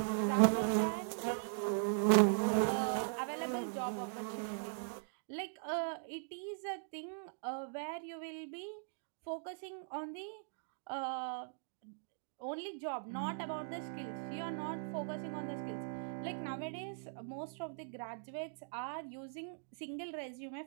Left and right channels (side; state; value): left; silent; digital silence